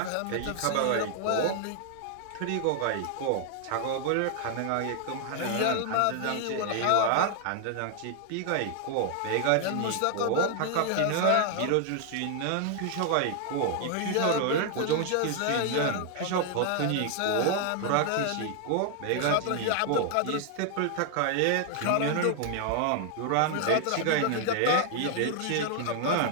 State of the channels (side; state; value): both; different; correlation 0.00